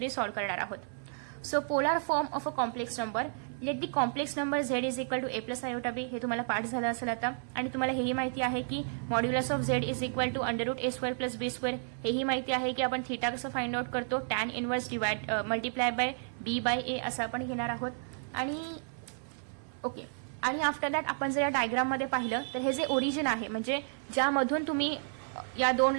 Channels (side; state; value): left; silent; 56 dB below the other